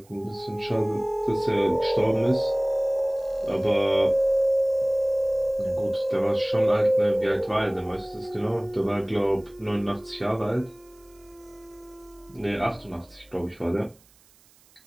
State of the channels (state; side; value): noise; right; hiss, 30 dB below the sound